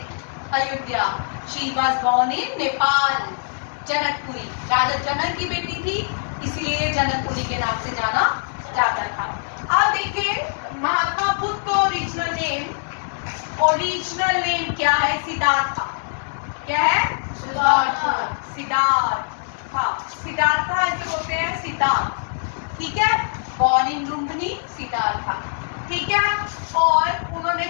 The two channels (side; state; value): right; silent; 64 dB below the other